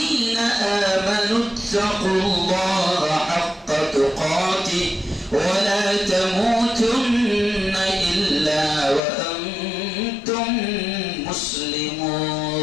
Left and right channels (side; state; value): right; drops out; at 9.0 s